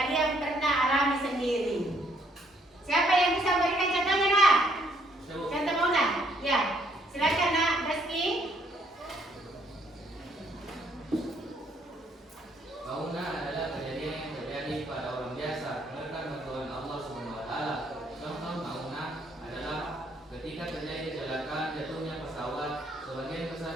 pernah alami sendiri. Siapa yang bisa memberikan contohnya, Nak? Contoh maunah? Ya, silakan Nak, Rizky. Maunah adalah kejadian yang terjadi pada orang biasa menekan bantuan Allah SWT. Contoh maunah adalah ketika terjadi kecelakaan jatuhnya pesawat, sebagian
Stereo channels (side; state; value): both; normal; correlation 0.68